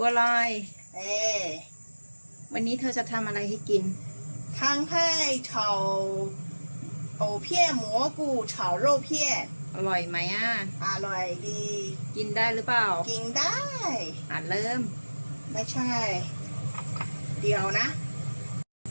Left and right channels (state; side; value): inverted; both; correlation -1.00